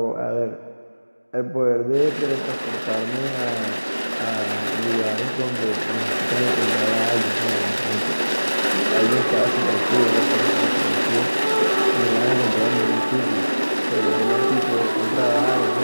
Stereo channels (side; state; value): both; inverted; correlation -1.00